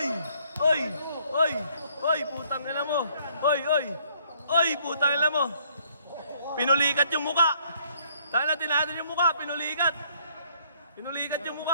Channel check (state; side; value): inverted; both; correlation -0.65